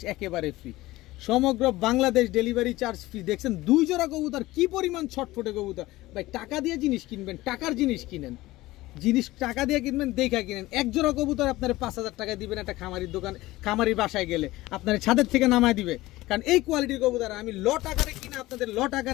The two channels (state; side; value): quieter; right; 18.2 dB